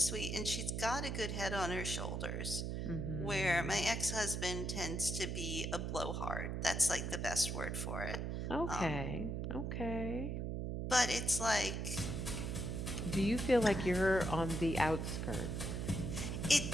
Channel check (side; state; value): right; noise; hum, 2 dB below the sound